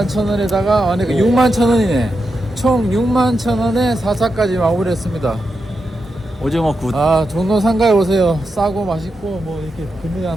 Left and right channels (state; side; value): normal; both; correlation 0.87